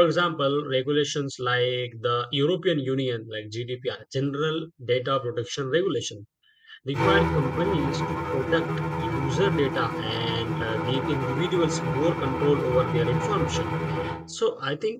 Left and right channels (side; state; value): both; identical; correlation 1.00